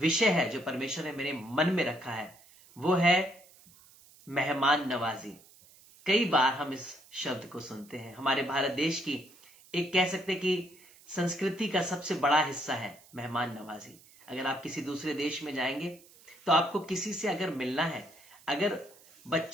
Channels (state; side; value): noise; right; hiss, 25 dB below the sound